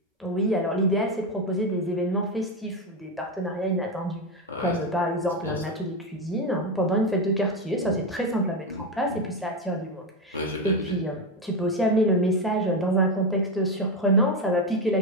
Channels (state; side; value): normal; both; correlation 0.12